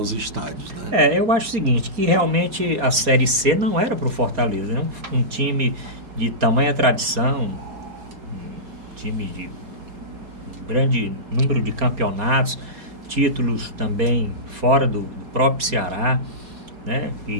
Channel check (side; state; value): left; late; 4.2 ms